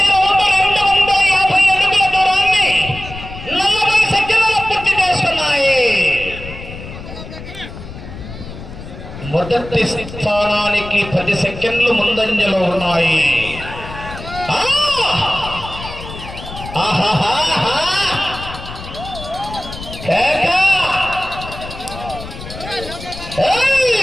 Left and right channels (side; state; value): left; noise; rumble, 12 dB below the sound